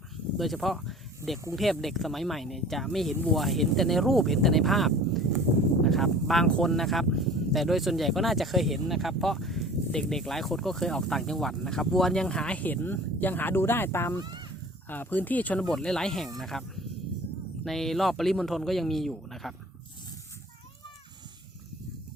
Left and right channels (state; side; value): normal; both; correlation 0.44